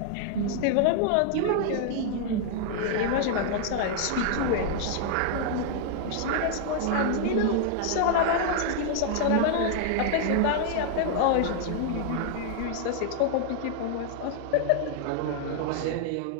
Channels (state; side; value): different; both; correlation 0.00